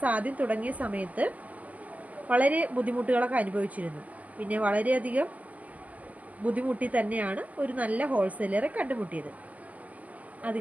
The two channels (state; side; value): late; left; 0.076 ms